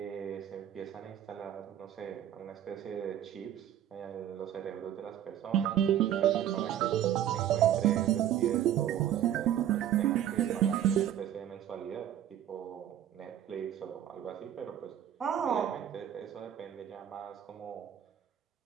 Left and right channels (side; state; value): left; quieter; 10.8 dB